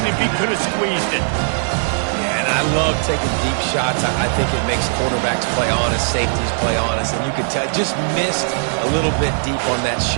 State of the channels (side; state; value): left; silent; digital silence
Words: if he could have squeezed it. Yeah, and and I love taking deep shots. I think it makes quarterbacks play honest, safeties play honest, and you can tell just missed a little bit deep on that